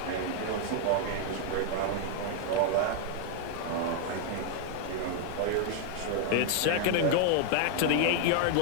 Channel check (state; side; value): different; both; correlation 0.00